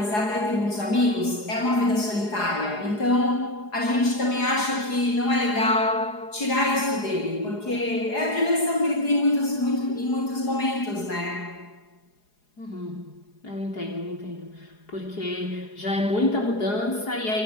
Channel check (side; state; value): right; late; 4.8 ms